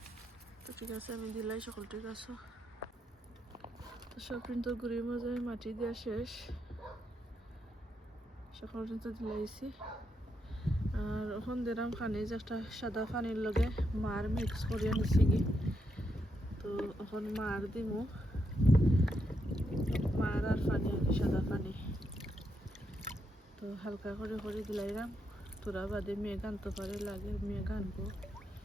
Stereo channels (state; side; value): normal; both; correlation 0.81